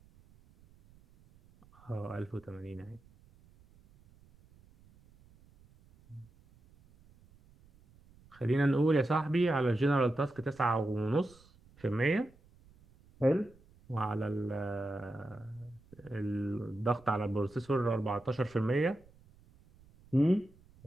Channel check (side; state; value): right; noise; rumble, 27 dB below the sound